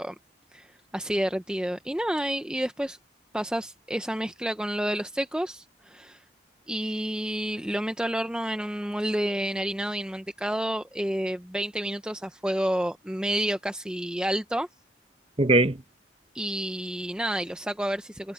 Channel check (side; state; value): both; normal; correlation 0.80